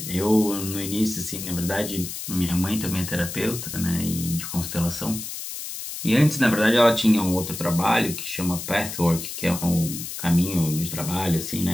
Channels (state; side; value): noise; left; hiss, 8 dB below the sound